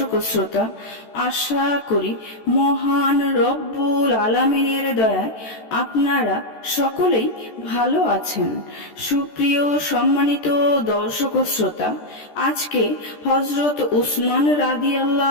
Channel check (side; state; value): right; late; 13 ms